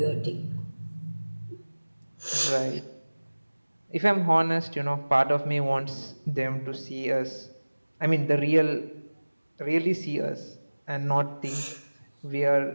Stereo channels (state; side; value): inverted; both; correlation -1.00